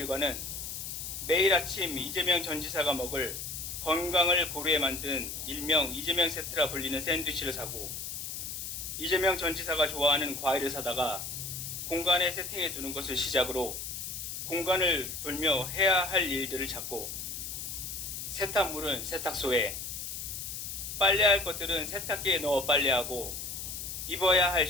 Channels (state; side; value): noise; left; hiss, 6 dB below the sound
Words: 매일 아침 이재명 전 지사가 먹을 건강을 고려해 만든 일명 이재명 세트라 불리는 샌드위치를 사고 이재명 전 지사가 좋아하는 과일을 사다가 공간에 세팅해 두는 것을 시작으로 공간을 돌며 해야 할 일들을 찾고 세탁물은 세탁소에, 빨래할 것들은 세탁기에 넣어 빨래하고 입어야 할